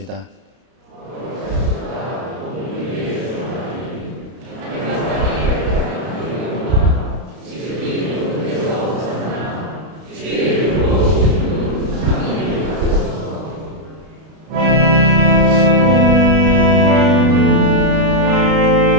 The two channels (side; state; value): left; late; 32 ms